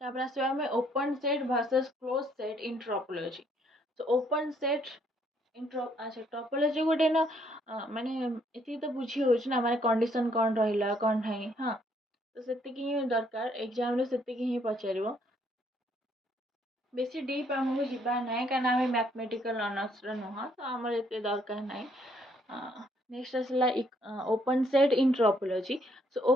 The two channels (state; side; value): normal; both; correlation 0.68